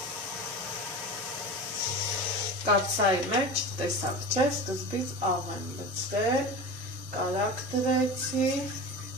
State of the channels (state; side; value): normal; both; correlation 0.30